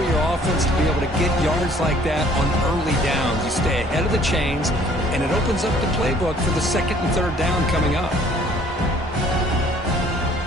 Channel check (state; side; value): normal; both; correlation 0.57